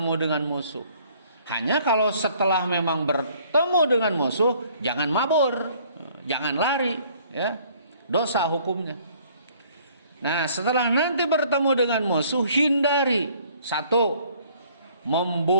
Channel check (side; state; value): both; inverted; correlation -0.59